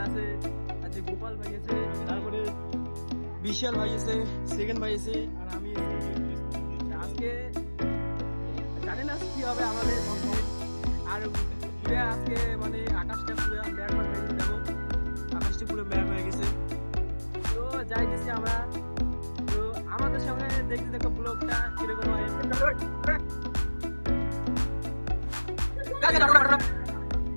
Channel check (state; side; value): inverted; both; correlation -1.00